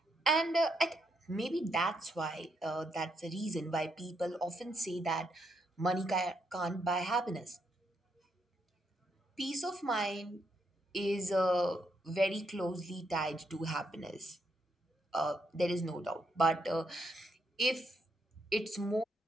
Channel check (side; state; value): both; normal; correlation 0.77